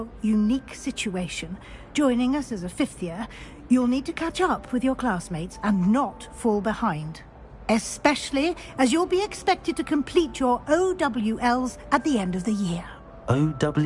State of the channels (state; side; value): identical; both; correlation 1.00